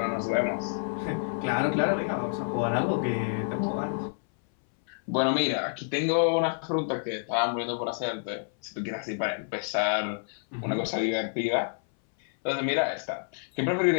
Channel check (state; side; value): silent; right; 59 dB below the other